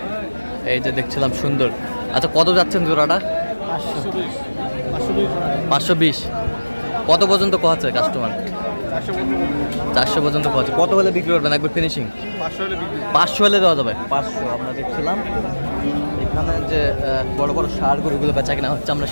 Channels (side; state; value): both; inverted; correlation -1.00